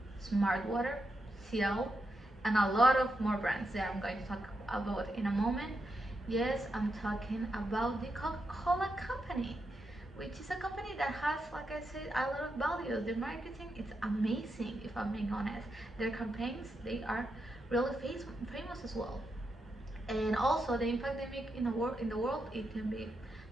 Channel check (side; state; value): both; normal; correlation 0.85